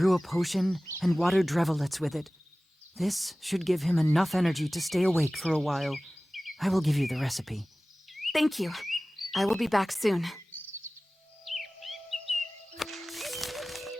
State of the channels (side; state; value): both; normal; correlation 0.98